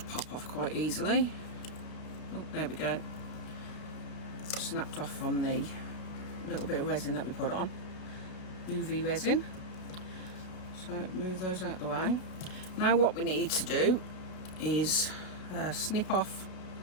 pop off quite easily. Oh, there we go. Snapped off from the little bit of resin that we put on, UV resin. So move those out the way. Now what we need to do is snip off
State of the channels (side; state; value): right; late; 33 ms